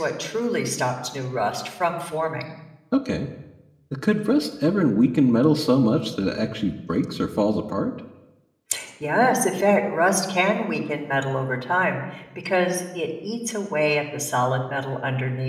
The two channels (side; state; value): both; identical; correlation 1.00